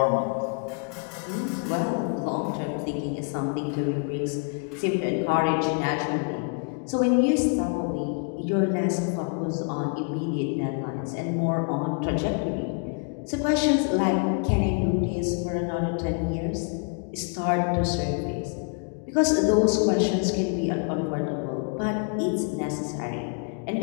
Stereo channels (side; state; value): right; quieter; 38.8 dB